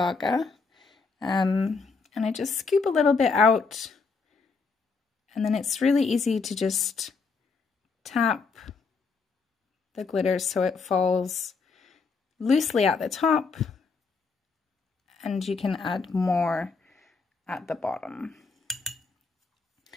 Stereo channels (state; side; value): quieter; right; 4.6 dB